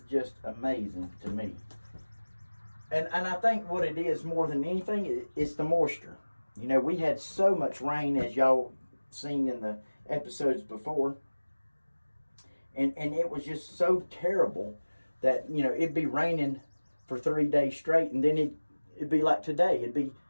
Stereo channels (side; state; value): both; inverted; correlation -1.00